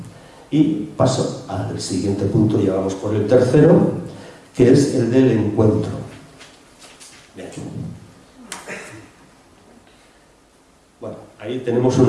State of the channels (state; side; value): identical; both; correlation 1.00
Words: Y paso al siguiente punto, ya vamos por el tercero, que es el del encuentro. Bien. Bueno, ahí tenemos